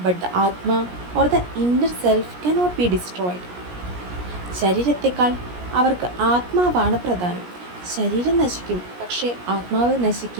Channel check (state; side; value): late; left; 17 ms